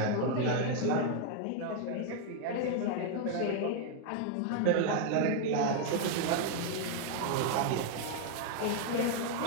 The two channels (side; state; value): both; different; correlation 0.00